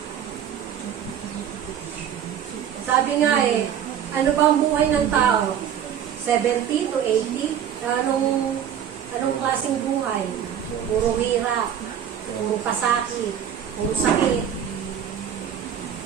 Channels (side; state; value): left; quieter; 9.1 dB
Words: Sabi nga ano ba ang buhay ng tao? 70 to 80? Anong klaseng buhay? Puro hirap, puro pasakit, puro sakit.